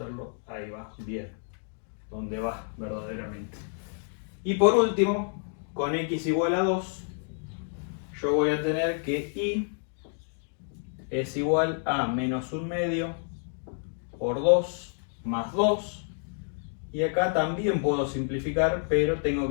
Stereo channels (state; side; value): silent; right; 58 dB below the other